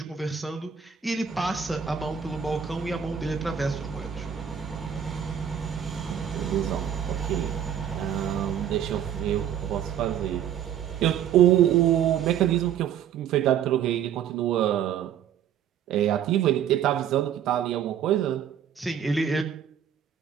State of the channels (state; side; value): quieter; left; 9.1 dB